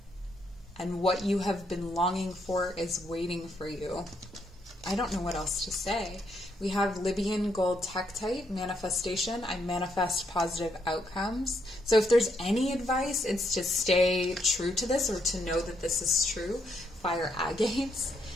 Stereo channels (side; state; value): both; normal; correlation 0.76